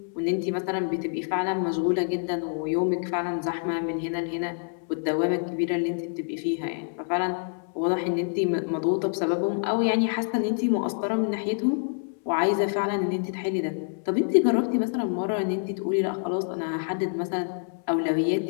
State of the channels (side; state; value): right; silent; 60 dB below the other